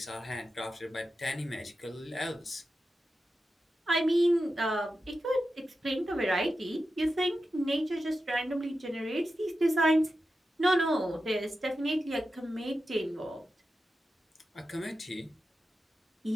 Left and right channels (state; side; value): normal; both; correlation 0.91